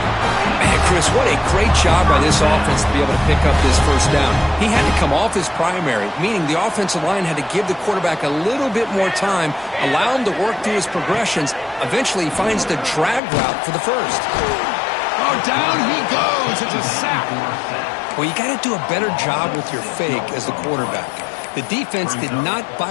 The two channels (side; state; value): right; drops out; at 13.2 s